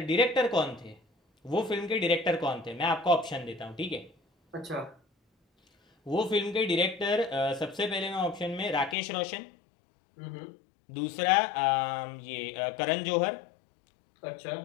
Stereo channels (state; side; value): drops out; right; at 9.0 s